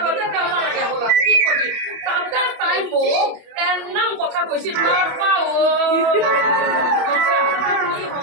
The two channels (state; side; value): late; left; 28 ms